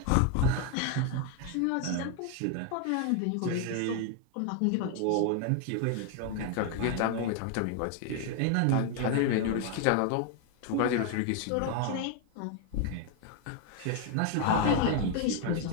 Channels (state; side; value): different; both; correlation 0.01